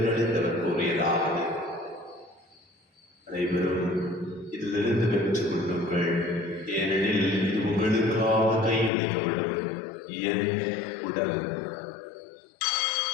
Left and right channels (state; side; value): drops out; right; at 8.9 s